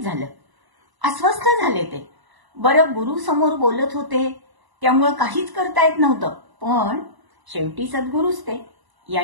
झालं, अस्वस्थ झाले ते। बरं, गुरु समोर बोलत होते त्यामुळे काहीच करता येत नव्हतं, पण शेवटी सद्गुरूच ते,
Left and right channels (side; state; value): left; late; 1.0 ms